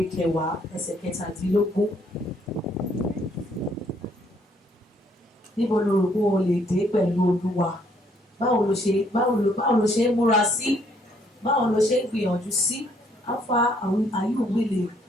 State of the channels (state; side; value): normal; both; correlation 0.67